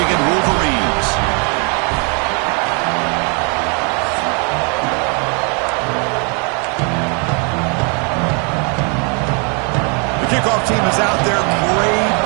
Wolverines. The kickoff team is out there. Great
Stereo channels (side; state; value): left; quieter; 35.8 dB